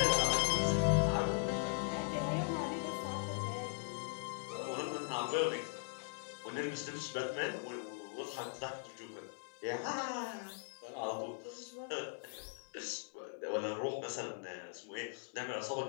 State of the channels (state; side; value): silent; right; digital silence